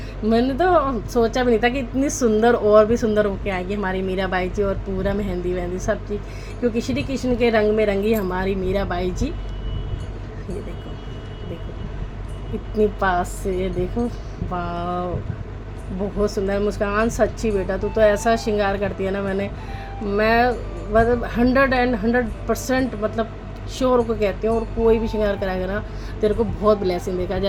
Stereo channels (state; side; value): identical; both; correlation 1.00